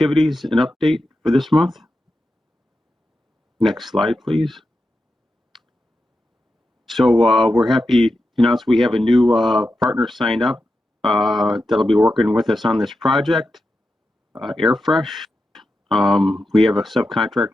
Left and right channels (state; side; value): normal; both; correlation 0.89